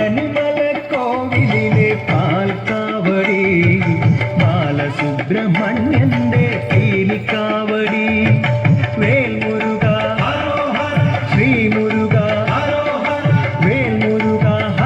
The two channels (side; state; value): both; identical; correlation 1.00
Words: കോവിലിലെ പാൽക്കാവടി, ബാലസുബ്രഹ്മണ്യന്റെ പീലിക്കാവടി. വേൽമുരുക ശ്രീമുരുക, വേൽമുരുക